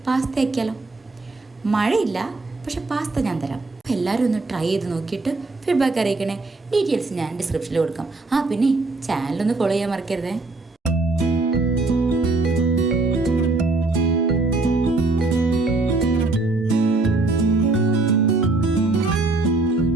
പാസ്ത ആക്കിയാലോ. മഴയില്ല, പക്ഷെ പാസ്ത ഞാൻ തരാം. എല്ലാവരും ഒന്ന് ട്രൈ ചെയ്ത് നോക്കിയിട്ട് ഫീഡ്ബാക്ക് അറിയിക്കണേ. ഡീറ്റെയിൽസ് ഞാൻ ഡിസ്ക്രിപ്ഷനിൽ കൊടുക്കാം. പിന്നെ ചാനലൊന്ന് ഫോളോ ചെയ്യാൻ മറക്കരുതേ.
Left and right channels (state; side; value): quieter; left; 3.3 dB